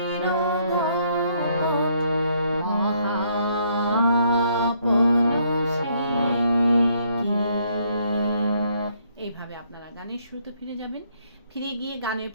গোপন মহা আপন সে কি। এইভাবে আপনারা গানের শুরুতে ফিরে যাবেন। ফিরে গিয়ে গানের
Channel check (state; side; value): inverted; both; correlation -0.69